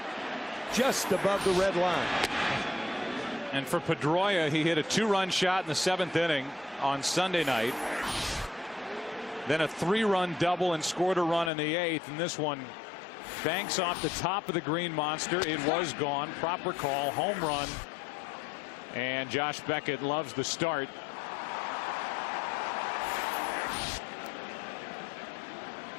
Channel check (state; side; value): drops out; right; at 11.5 s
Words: Just above the red line. And for Pedroia, he hit a 2-run shot in the 7th inning on Sunday night. Then a 3-run double and scored a run in the 8th. And this one banks off the top of the green monster. It was gone. Proper call. Home run. And Josh Beckett loves the start.